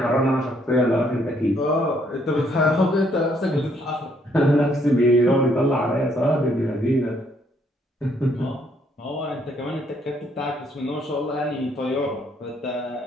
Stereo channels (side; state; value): both; normal; correlation 0.69